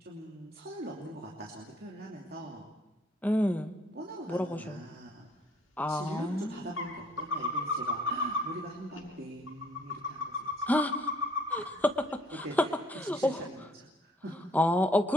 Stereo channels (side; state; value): both; normal; correlation 0.61